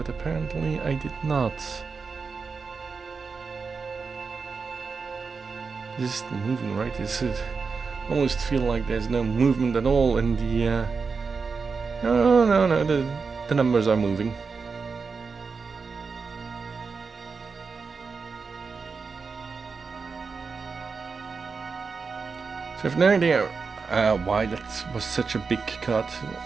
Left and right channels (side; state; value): left; quieter; 4.9 dB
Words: apparently I did not. This is moving, right? Is it almost feel like there's no movement at all in the no, the numbers are moving. So I have no idea why that was such a big cut.